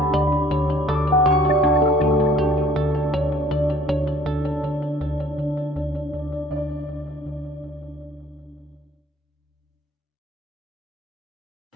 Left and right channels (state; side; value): normal; both; correlation 0.56